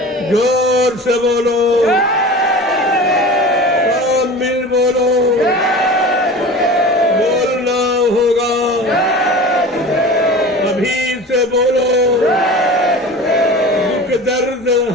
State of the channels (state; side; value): normal; both; correlation 0.35